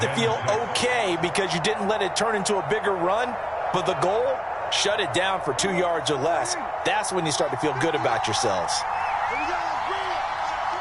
to feel okay because you didn't let it turn into a bigger run, but the goal, shut it down for 2 yards or less. That's when you start to feel good about yourselves.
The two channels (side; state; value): both; identical; correlation 1.00